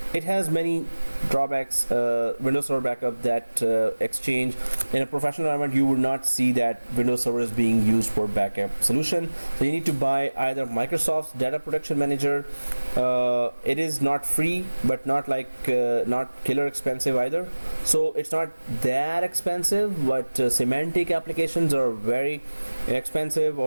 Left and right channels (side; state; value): both; inverted; correlation -1.00